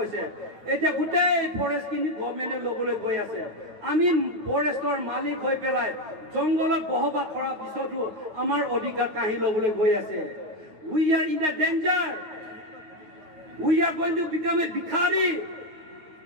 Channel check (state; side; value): late; left; 9.2 ms